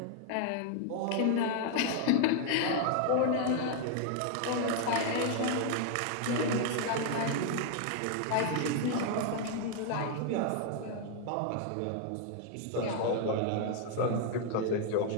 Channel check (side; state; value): both; different; correlation 0.00